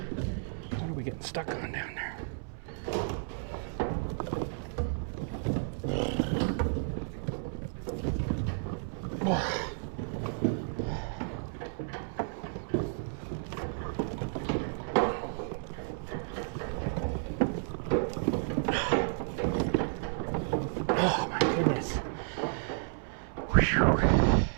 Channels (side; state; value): left; silent; 56 dB below the other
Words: What are we getting stuck on down there? Oh my goodness. Whew.